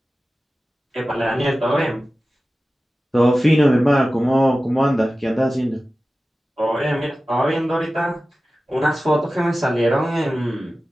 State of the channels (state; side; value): normal; both; correlation 0.95